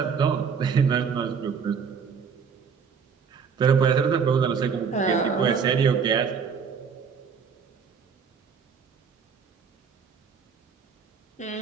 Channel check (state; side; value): quieter; left; 6.3 dB